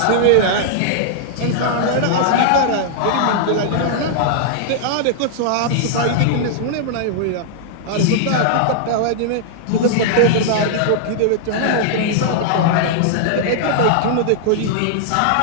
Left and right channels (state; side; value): different; both; correlation -0.01